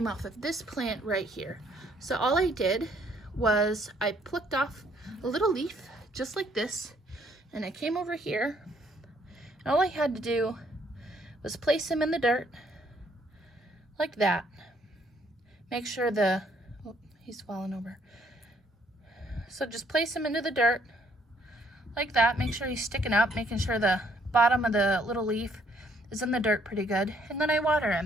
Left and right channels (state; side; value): normal; both; correlation 0.66